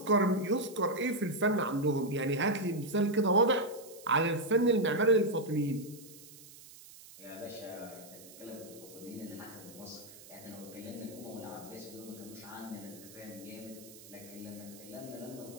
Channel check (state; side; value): noise; right; hiss, 19 dB below the sound